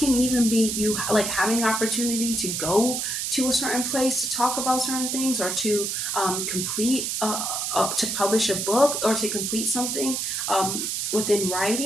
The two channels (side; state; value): right; noise; hiss, 1 dB below the sound